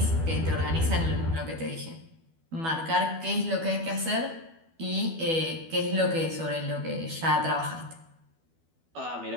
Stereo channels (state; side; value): late; left; 12 ms